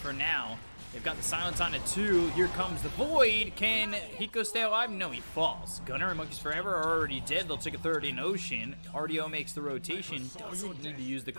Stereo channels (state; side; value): inverted; both; correlation -1.00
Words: now. They've got the silence on it too. Here comes the void. Can Hiko stay alive? No, he falls. Gunner and Monkeys Forever are already dead. They'll take a third in Ocean. RDO makes the rotation. Doesn't need to use the